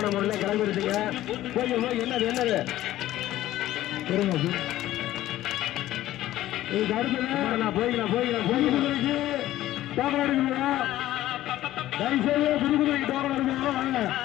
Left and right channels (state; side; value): quieter; right; 14.5 dB